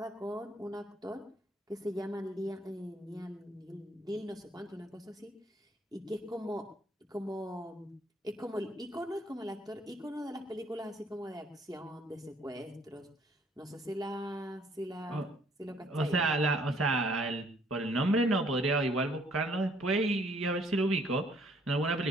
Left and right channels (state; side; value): normal; both; correlation 0.63